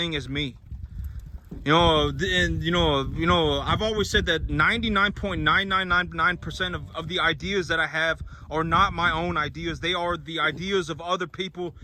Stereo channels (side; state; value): both; identical; correlation 1.00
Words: as me. You know, and you know, I've always said that 99.9999% of the ideas that I have are not my own ideas. They are the ideas of other people